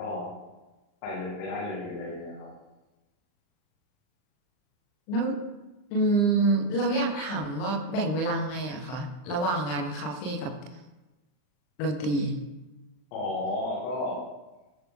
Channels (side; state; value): right; late; 39 ms